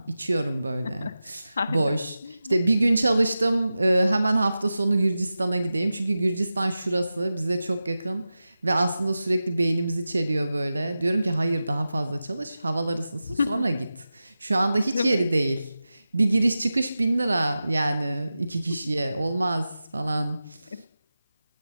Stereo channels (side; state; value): both; inverted; correlation -0.93